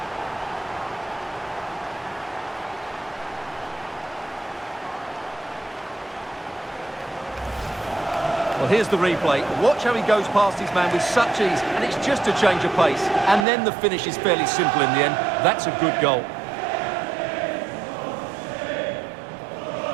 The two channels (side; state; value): left; drops out; at 13.5 s